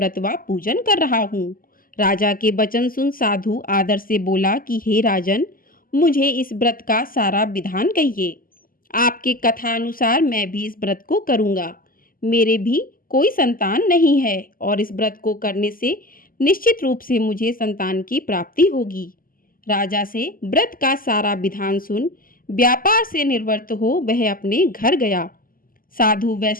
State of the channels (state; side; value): late; right; 0.41 ms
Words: व पूजन कर रहा हूँ। राजा के वचन सुन साधु आदर से बोला कि हे राजन, मुझे इस व्रत का सारा विधान कहिए। आपके कथा अनुसार मैं भी इस व्रत को करूँगा। मेरे भी कोई संतान नहीं है और इस व्रत को करने से निश्चित रूप से मुझे संतान की प्राप्ति होगी। राजा से व्रत का सारा विधान सुन व्यापार से निवृत्त हो वह अपने घर गया। साधु